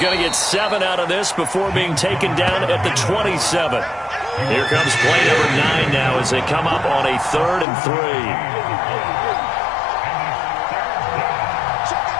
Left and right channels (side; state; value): right; drops out; at 7.7 s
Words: to get 7 out of this before being taken down at the 27. Here comes play number 9 now as they come up on a 3rd and